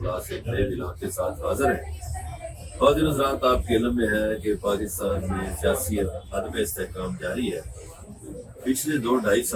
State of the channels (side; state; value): both; identical; correlation 1.00